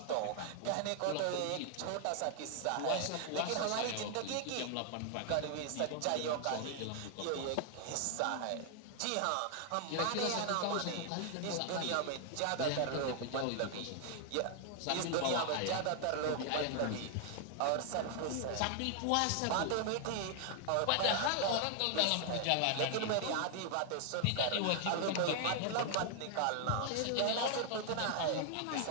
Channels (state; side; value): different; both; correlation 0.00